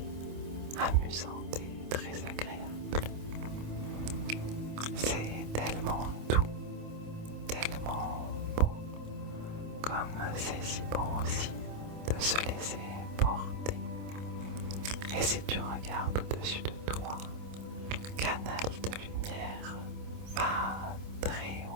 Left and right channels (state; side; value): late; left; 27 ms